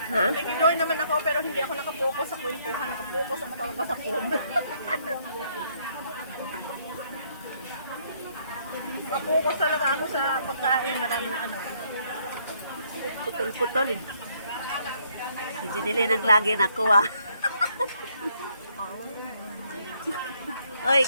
Ha? Nakikiloy naman ako pero hindi ako nakapokus sa kwentuhan. Nakapokus ako talaga sa phone. Nakapokus talaga ako sa pagkain. Maraming ano. Putol-putol eh. Si Jinilin ang lagi nakuha. Oy,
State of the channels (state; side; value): inverted; both; correlation -0.69